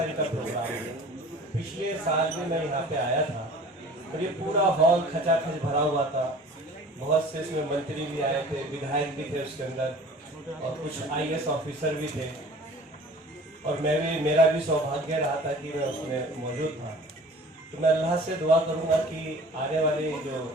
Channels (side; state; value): both; normal; correlation 0.45